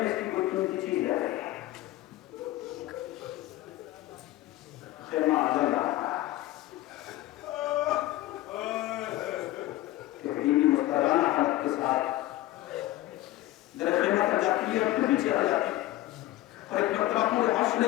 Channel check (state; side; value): quieter; right; 16.0 dB